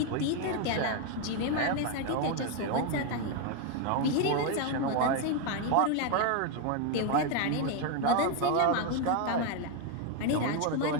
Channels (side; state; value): both; different; correlation 0.01